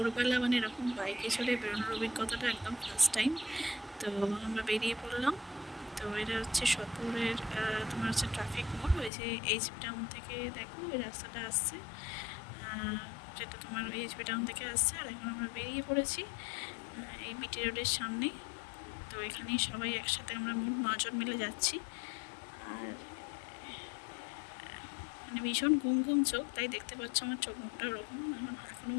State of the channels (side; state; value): right; drops out; at 9.1 s